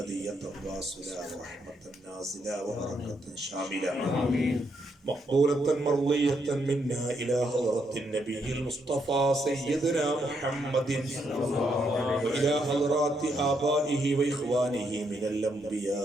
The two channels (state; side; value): normal; both; correlation 0.77